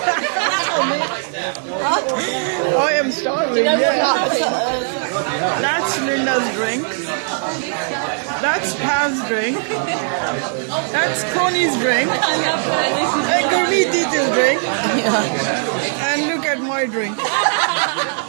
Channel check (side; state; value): left; silent; digital silence